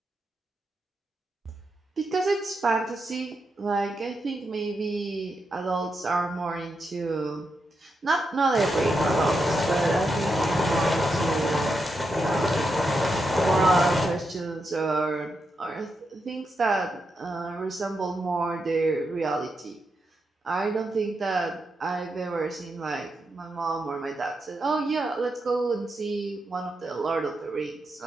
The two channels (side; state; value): both; normal; correlation 0.85